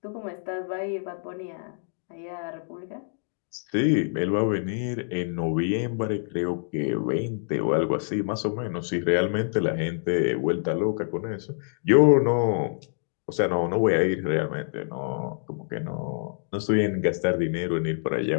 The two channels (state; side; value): silent; right; digital silence